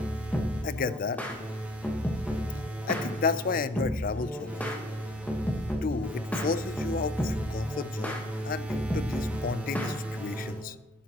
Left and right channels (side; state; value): both; normal; correlation 0.57